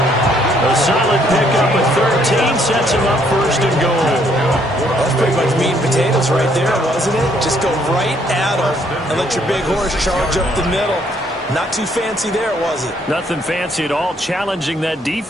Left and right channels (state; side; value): normal; both; correlation 0.68